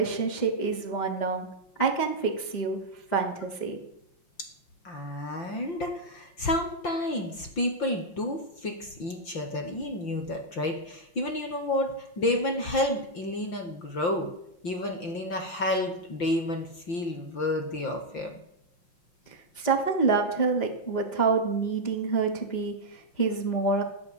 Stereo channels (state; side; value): late; right; 5.8 ms